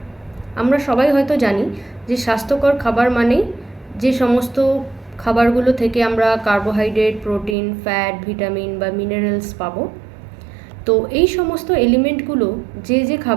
আমরা সবাই হয়তো জানি যে স্বাস্থ্যকর খাবার মানেই যে সমস্ত খাবারগুলো থেকে আমরা কার্বোহাইড্রেট, প্রোটিন, ফ্যাট, ভিটামিন বা মিনারেলস পাবো। তো এই সমস্ত এলিমেন্টগুলো যে যে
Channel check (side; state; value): left; drops out; at 7.6 s